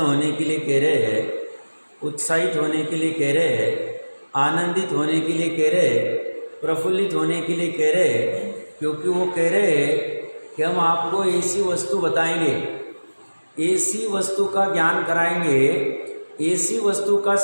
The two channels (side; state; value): both; inverted; correlation -1.00